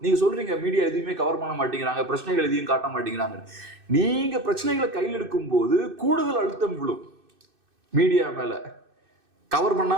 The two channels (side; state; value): left; late; 2.6 ms